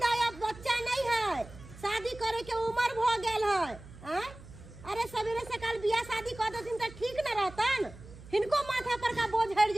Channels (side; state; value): right; noise; hum, 18 dB below the sound